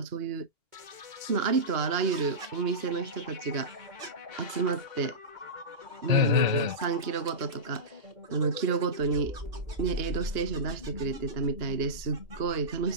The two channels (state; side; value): late; left; 2.9 ms